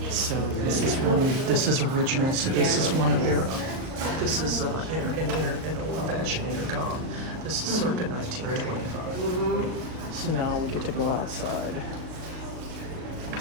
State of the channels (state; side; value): late; left; 38 ms